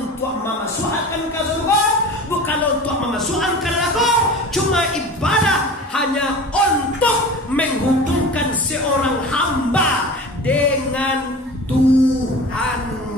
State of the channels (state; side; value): normal; both; correlation 0.36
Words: memasukkan ke surga, bukan untuk memasukkan ke neraka, cuma ibadah hanya untuk menghubungkan seorang hamba dengan